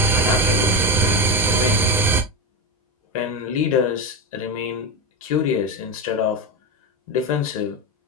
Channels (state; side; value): normal; both; correlation 0.16